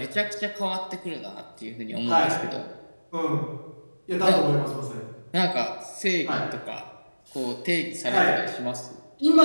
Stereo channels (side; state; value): both; inverted; correlation -1.00